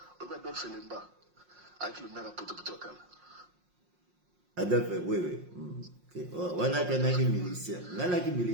Obi Adolphe Lemba avec le maire à potopoto kala. Adolphe, oui. Okay. Wana kanaki militia. Ngana ki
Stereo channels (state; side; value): late; left; 5.6 ms